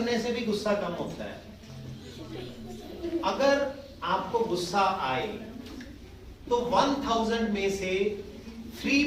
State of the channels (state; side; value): identical; both; correlation 1.00